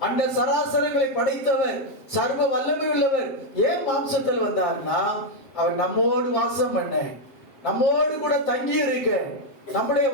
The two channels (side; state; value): right; late; 7.7 ms